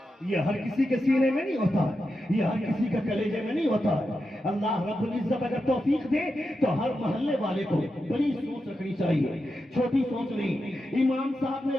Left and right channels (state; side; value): normal; both; correlation 0.88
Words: ये हर किसी के सीने में नहीं होता है, ये हर किसी के कलेजे में नहीं होता है। अल्लाह रब्बुल इज्जत अगर तौफीक दे तो हर मोहल्ले वाले को बड़ी सोच रखनी चाहिए, छोटी सोच नहीं। इमाम साहब ने